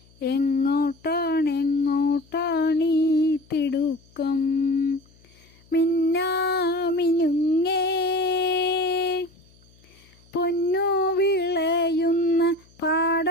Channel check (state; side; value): noise; left; hum, 29 dB below the sound